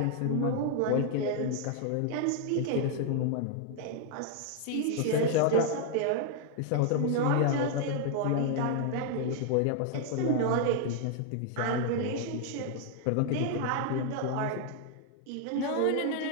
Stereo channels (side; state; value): both; different; correlation 0.00